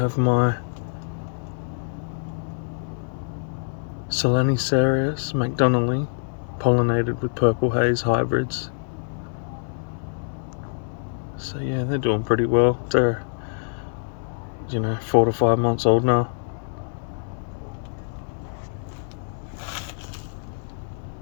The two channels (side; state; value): right; silent; digital silence